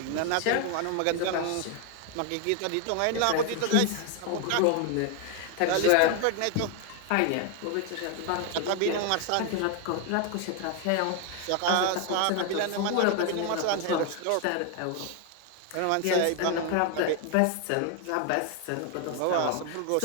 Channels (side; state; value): both; different; correlation 0.01